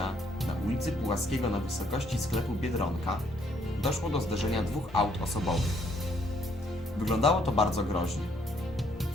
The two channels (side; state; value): both; normal; correlation 0.68